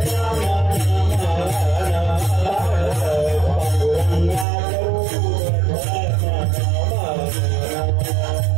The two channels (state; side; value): drops out; left; at 4.5 s